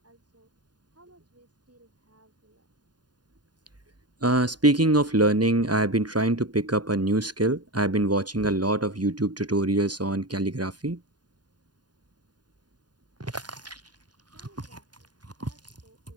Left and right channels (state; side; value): late; left; 0.70 ms